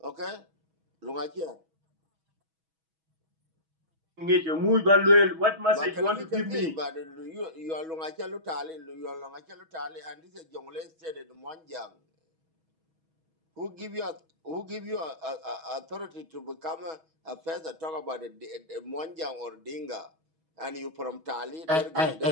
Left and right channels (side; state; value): left; late; 6.2 ms